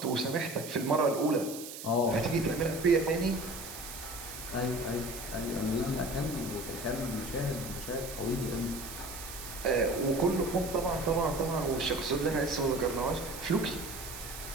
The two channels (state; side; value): noise; right; hiss, 11 dB below the sound